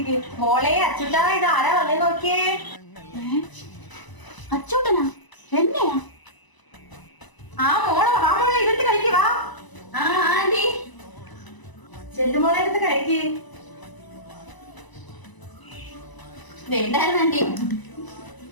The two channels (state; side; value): late; right; 1.0 ms